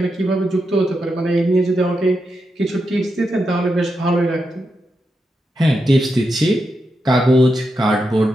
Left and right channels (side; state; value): both; normal; correlation 0.86